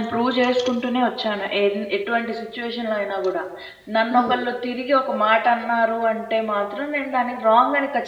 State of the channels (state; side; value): identical; both; correlation 1.00